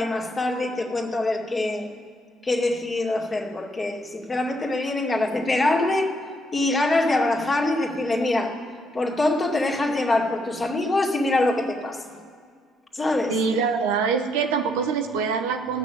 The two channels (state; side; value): normal; both; correlation 0.73